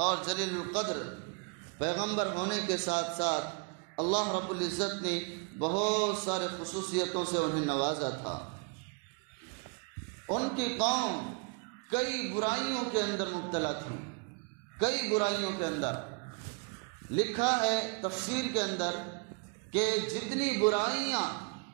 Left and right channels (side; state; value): left; quieter; 34.5 dB